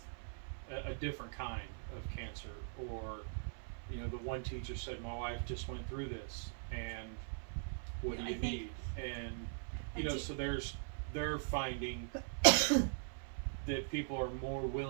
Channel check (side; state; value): left; silent; 50 dB below the other